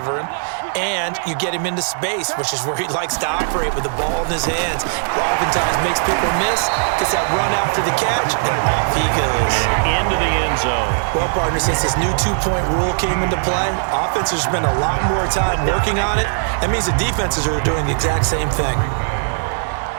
him, and you get him into space, which is where he likes to operate with the ball in his hands. Oftentimes makes people miss, gets that run after the catch, and off he goes. Into the end zone. Well, partner, since this new two-point rule came into play, offenses spend a lot more time working on it. That means the defenses are doing the exact same thing.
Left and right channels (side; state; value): left; silent; digital silence